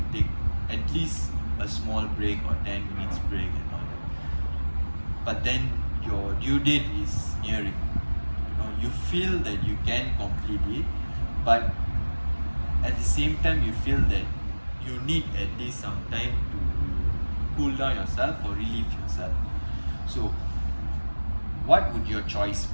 take at least a small break or 10 minutes break and all that. But then your due date is nearing, you feel that you can complete it, but at the same time you feel that you need at least some time to cool down yourself or relieve yourself. So what would your choice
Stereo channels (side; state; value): both; inverted; correlation -1.00